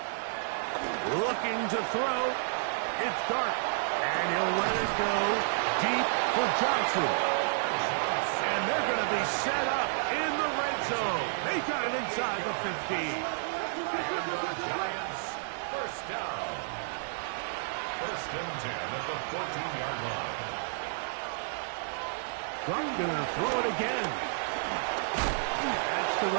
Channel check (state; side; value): silent; left; digital silence